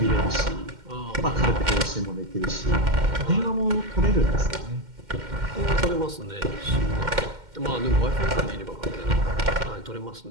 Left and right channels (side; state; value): left; late; 2.1 ms